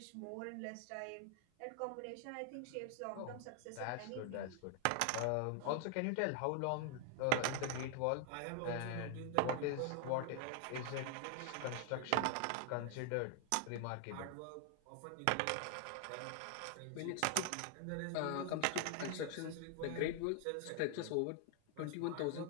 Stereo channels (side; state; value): both; different; correlation 0.00